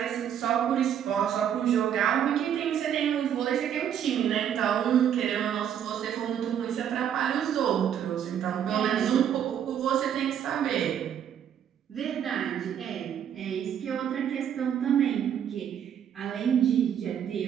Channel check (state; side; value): quieter; left; 9.2 dB